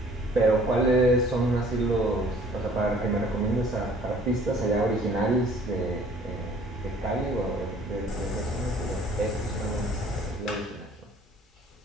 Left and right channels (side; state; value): both; normal; correlation 0.54